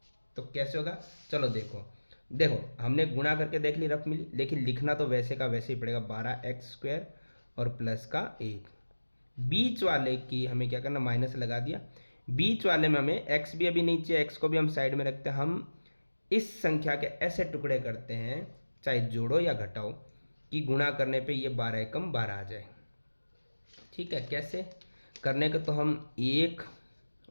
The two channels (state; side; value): inverted; both; correlation -1.00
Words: तो कैसे होगा, चलो देखो हमने गुणा करके देख ली, रफ मिली, लेकिन लिखना तो वैसे का वैसे ही पड़ेगा, 12x स्क्वायर और प्लस का 1। बीच वाले की हमें क्या करना, माइनस लगा दिया। बीच वाले में हमें x भी अभी नहीं चाहिए, x को भी हम साइड में रखते हैं। हम इस संख्या के ऐसे टुकड़े करते हैं, चाहे जोड़ो या घटाओ, कि गुणा करने पे ये 12 एकम 12 आ जाए। ठीक है, कैसे करने का, तो हम 1